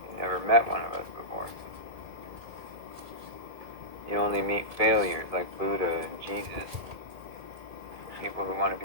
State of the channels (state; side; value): late; left; 2.3 ms